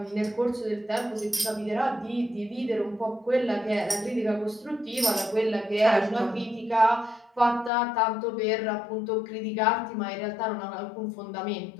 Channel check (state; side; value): drops out; right; at 7.7 s